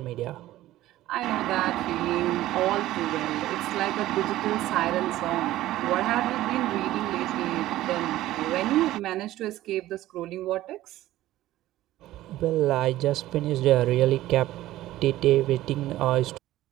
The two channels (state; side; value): quieter; left; 15.2 dB